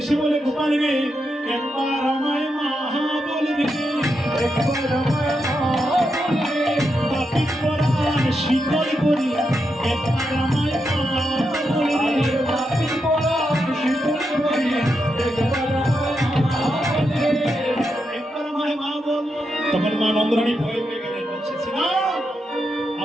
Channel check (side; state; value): both; normal; correlation 0.85